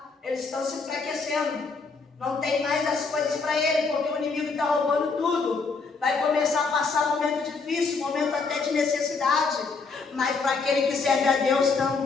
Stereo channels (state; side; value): quieter; right; 4.5 dB